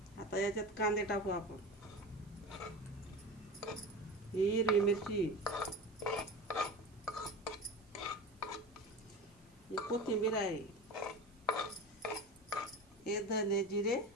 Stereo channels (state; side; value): noise; right; hiss, 30 dB below the sound